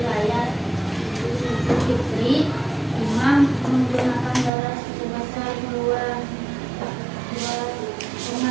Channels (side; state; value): left; drops out; at 4.5 s